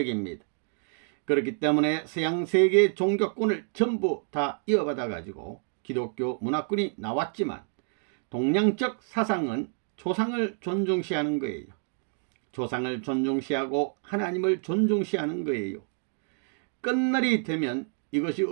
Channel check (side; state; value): left; silent; 59 dB below the other